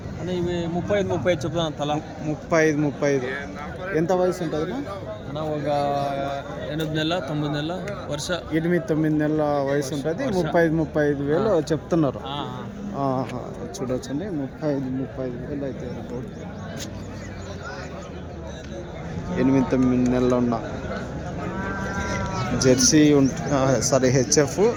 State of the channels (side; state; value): both; identical; correlation 1.00